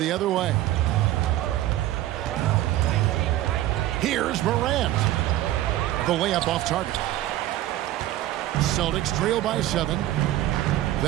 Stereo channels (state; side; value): quieter; left; 14.4 dB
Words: other way. Here's Morant. The layup off target. Celtics trail by 7.